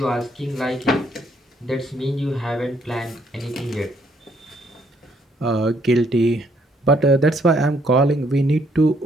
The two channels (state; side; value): normal; both; correlation 0.69